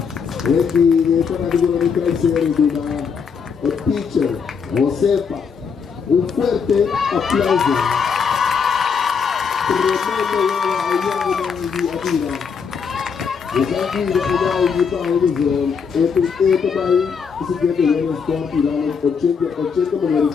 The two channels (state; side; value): quieter; right; 6.2 dB